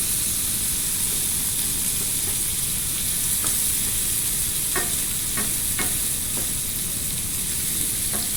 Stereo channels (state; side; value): noise; left; rumble, 5 dB below the sound